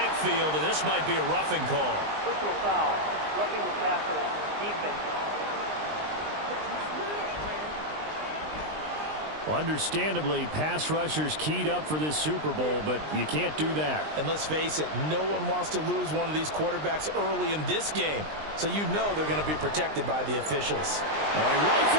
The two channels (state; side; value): late; left; 20 ms